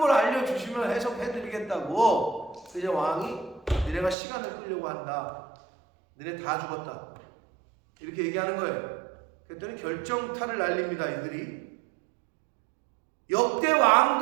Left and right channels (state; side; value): drops out; left; at 4.2 s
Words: 알려주시면 해석해드리겠다고. 그래서 왕이 니네가 시간을 끌려고 한다. 너네 다 죽었다. 이렇게 얘기하는 거예요. 그랬더니 결정타를 날립니다. 이들이. 역대